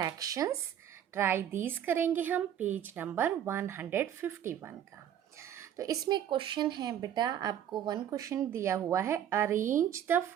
Try these करेंगे हम page number 151 का। तो इसमें question है बेटा, आपको वन क्वेश्चन दिया हुआ है, arrange the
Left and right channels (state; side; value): quieter; left; 10.1 dB